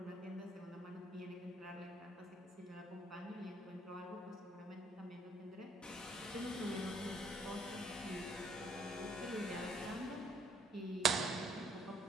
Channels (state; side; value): normal; both; correlation 0.65